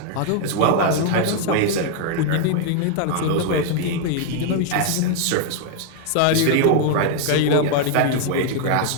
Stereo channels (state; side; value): different; both; correlation 0.00